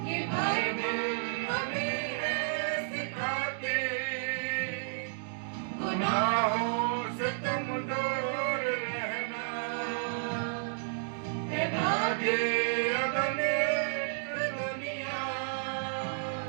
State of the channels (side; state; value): left; silent; digital silence